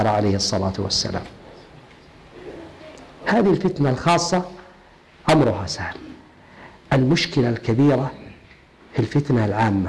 عليه الصلاة والسلام. هذه الفتنة الخاصة أمرها سهل. المشكلة الكبيرة في الفتنة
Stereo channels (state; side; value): identical; both; correlation 1.00